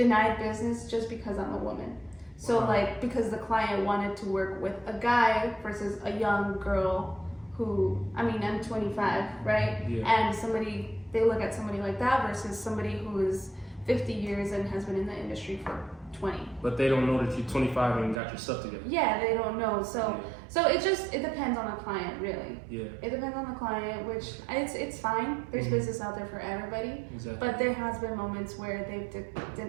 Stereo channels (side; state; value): left; drops out; at 18.2 s